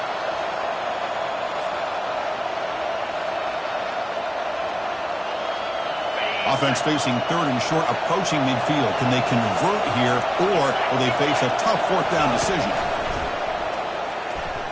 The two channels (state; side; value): identical; both; correlation 1.00